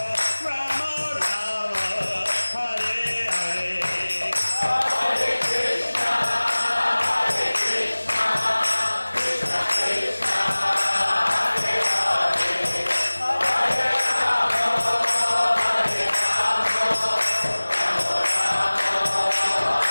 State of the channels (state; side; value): inverted; both; correlation -1.00